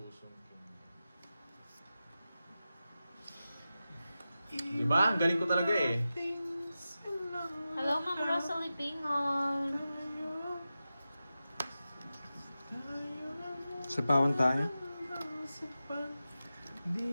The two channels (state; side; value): inverted; both; correlation -0.93